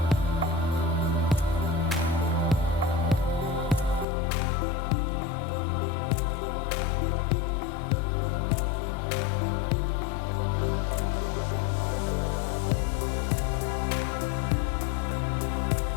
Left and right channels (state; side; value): drops out; right; at 4.0 s